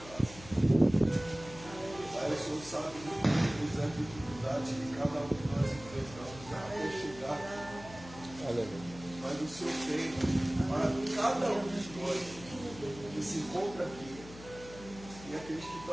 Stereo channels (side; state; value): left; noise; hum, 16 dB below the sound